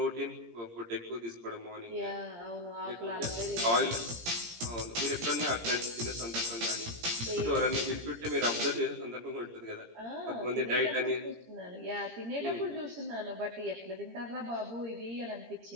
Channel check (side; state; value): left; late; 17 ms